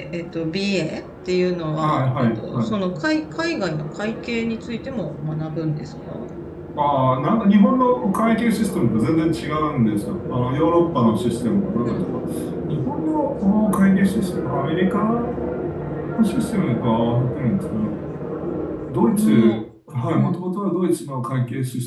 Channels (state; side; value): identical; both; correlation 1.00